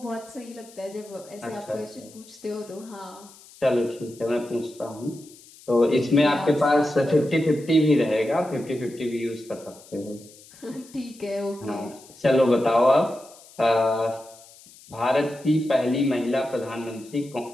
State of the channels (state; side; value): noise; left; hiss, 23 dB below the sound